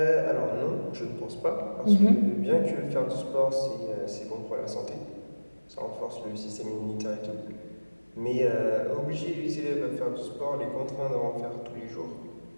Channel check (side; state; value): both; inverted; correlation -1.00